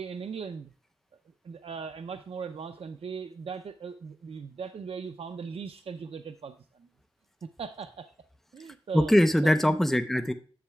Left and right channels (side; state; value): both; normal; correlation 0.94